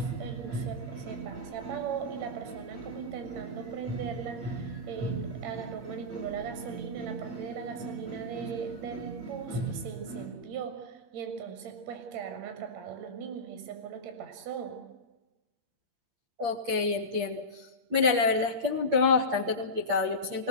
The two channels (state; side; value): late; left; 8.5 ms